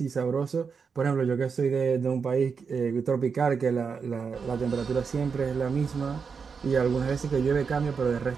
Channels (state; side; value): quieter; left; 5.7 dB